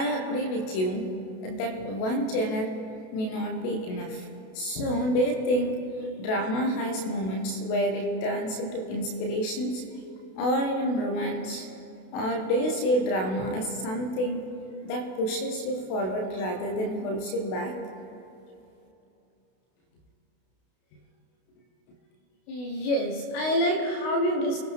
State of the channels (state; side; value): late; right; 32 ms